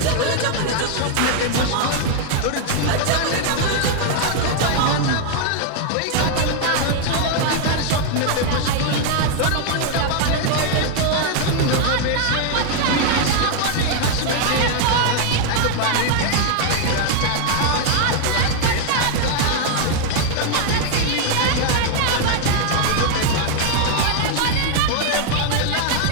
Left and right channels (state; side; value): different; both; correlation 0.00